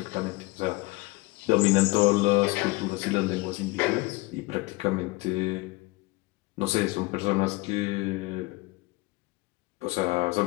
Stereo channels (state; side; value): quieter; right; 22.6 dB